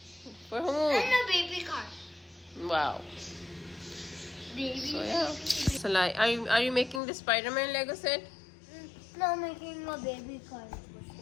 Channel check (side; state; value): right; drops out; at 7.0 s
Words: For whom? and a baby car. Wow. Baby. So yeah. Salaar, are you making the Spider-Man Lego set? No, making a baby car.